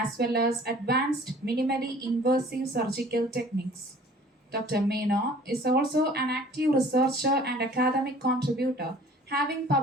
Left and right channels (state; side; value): normal; both; correlation 0.50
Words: well as advanced minimally invasive surgical techniques. Dr. Menon is also an active researcher and academic contributor, having